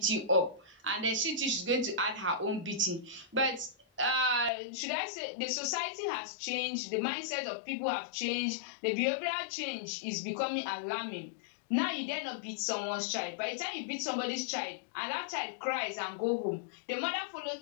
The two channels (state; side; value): drops out; right; at 4.5 s